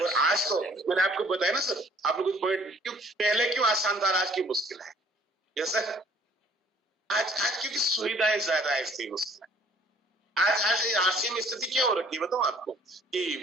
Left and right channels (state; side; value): normal; both; correlation 0.57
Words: आज तो मैंने आपको बताया ना सर, आप लोग पॉइंट क्यों पहले क्यों आसान था, आज की मुश्किल है। यस सर, आज क्योंकि सुविधाएं ज्यादा है इसलिए मुश्किल है। आज आरसीएम में स्थिति क्या हो रखी है बताऊं आपको,